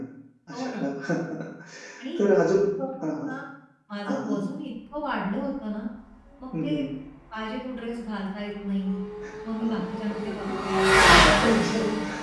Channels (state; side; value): identical; both; correlation 1.00